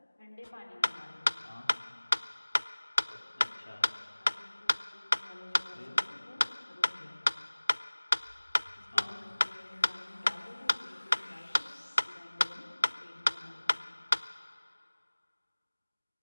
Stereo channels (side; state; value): both; inverted; correlation -1.00